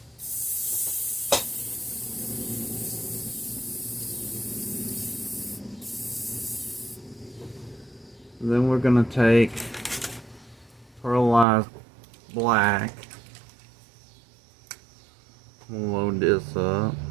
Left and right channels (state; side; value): drops out; left; at 11.5 s